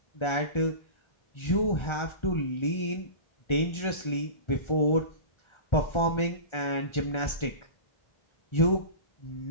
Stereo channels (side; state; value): right; late; 1.3 ms